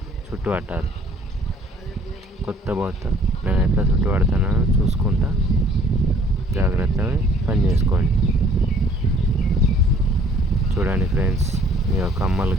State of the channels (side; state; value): both; normal; correlation 0.57